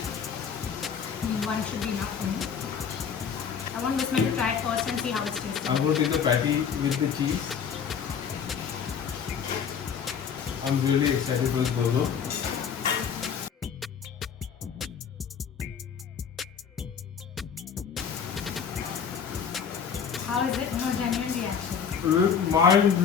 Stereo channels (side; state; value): right; quieter; 7.1 dB